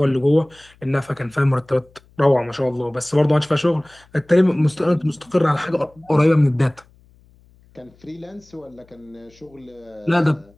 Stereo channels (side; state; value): left; noise; hum, 30 dB below the sound